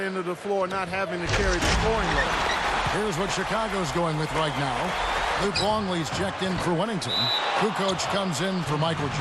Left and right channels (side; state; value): both; identical; correlation 1.00